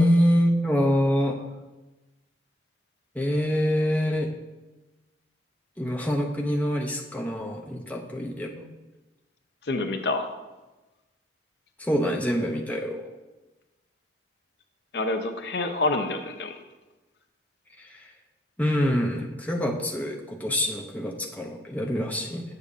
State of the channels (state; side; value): normal; both; correlation 0.74